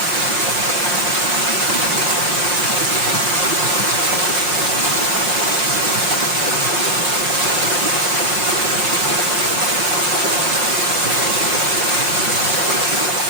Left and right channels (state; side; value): late; left; 5.7 ms